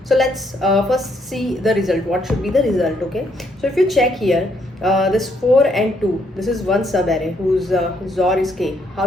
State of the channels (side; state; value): both; normal; correlation 0.72